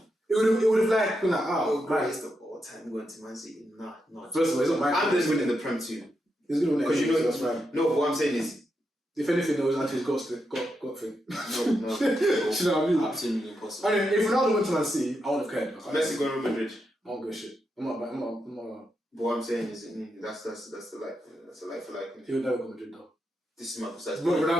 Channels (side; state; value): both; normal; correlation 0.84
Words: It would have like been like, Oh, oh, greatest of all time going to Man City. Nah. First of all, it's not my I'm just winning the Prem too. He's gonna win Because you know, that's fine. no, but what I'm saying is, If anything, there was actually his got thing. no. Do you know what I mean? Absolutely impossible. I mean, if Ronaldo went to Man City, I wouldn't have cared. Messi going to Real Madrid. I don't give a shit. I'm not. But what I'm saying is, that's the like for like. He would never go to Madrid though. This is my precise But point.